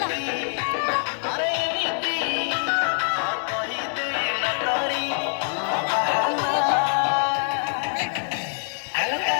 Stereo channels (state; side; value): silent; right; 62 dB below the other